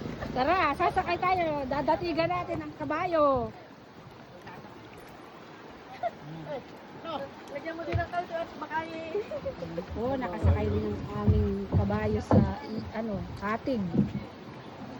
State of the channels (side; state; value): both; identical; correlation 1.00